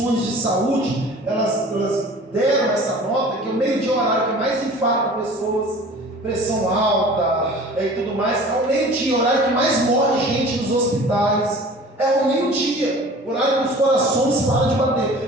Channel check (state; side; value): normal; both; correlation 0.43